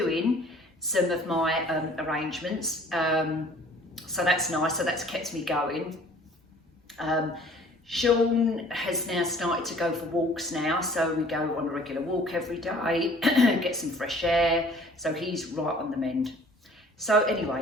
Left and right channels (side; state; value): both; normal; correlation 0.52